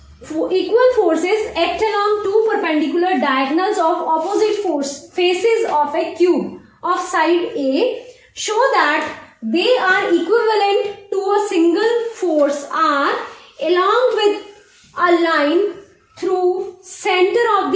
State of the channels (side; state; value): both; identical; correlation 1.00